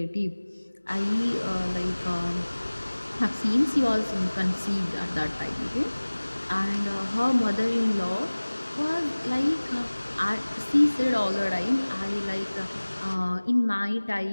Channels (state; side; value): inverted; both; correlation -1.00